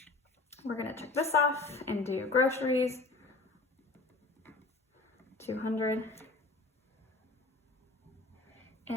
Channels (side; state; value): right; quieter; 3.4 dB